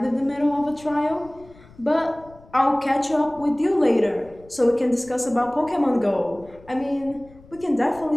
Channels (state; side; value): noise; left; rumble, 24 dB below the sound